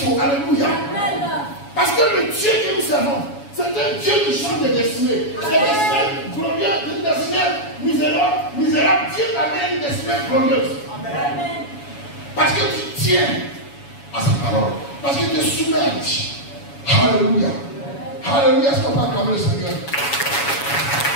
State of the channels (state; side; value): late; right; 7.1 ms